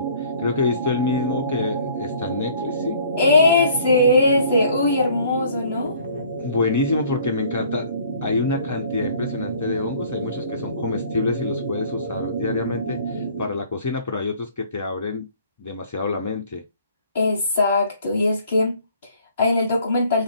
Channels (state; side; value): inverted; both; correlation -0.56